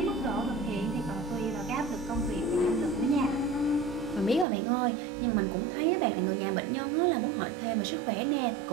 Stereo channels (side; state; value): left; drops out; at 4.5 s